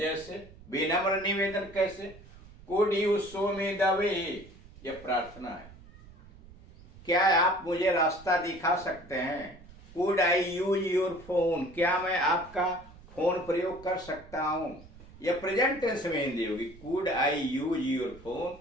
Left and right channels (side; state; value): right; noise; rumble, 21 dB below the sound